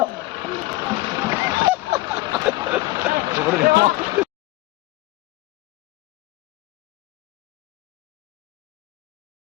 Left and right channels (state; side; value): quieter; right; 18.7 dB